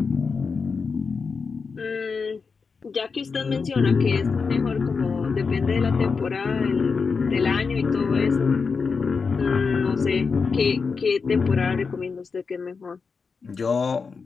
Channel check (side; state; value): right; quieter; 5.1 dB